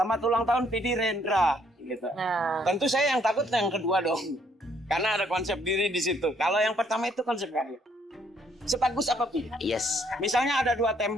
ulang tahun Pidi Rendra, gitu. Nah, Tentu saya yang takut yang kedua dong, karena ada konsep diri di situ. Kalau yang pertama itu konsep karya. Sebagus apa Pi? Yes. Misalnya ada dua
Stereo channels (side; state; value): both; normal; correlation 0.67